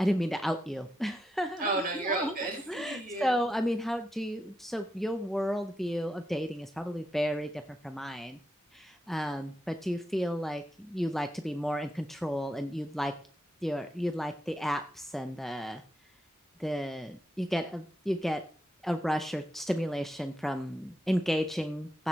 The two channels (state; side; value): normal; both; correlation 0.84